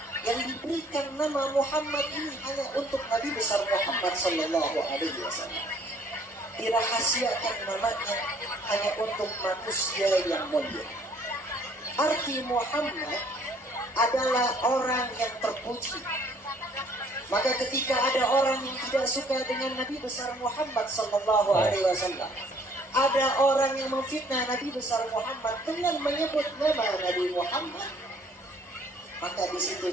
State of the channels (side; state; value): both; normal; correlation 0.59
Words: yang diberikan nama Muhammad ini hanya untuk Nabi besar Muhammad sallallahu alaihi wasallam. Dirahasiakan namanya hanya untuk manusia yang mulia. Arti Muhammad adalah orang yang terpuji. Maka ketika ada orang yang tidak suka dengan Nabi besar Muhammad sallallahu alaihi wasallam, ada orang yang memfitnah Nabi besar Muhammad dengan menyebut nama Nabi Muhammad, maka di situ